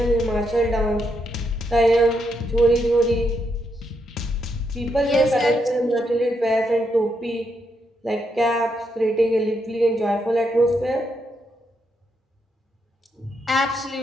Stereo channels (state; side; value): normal; both; correlation 0.79